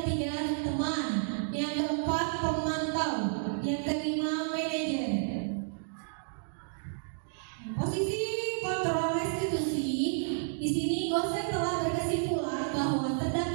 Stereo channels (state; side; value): silent; left; digital silence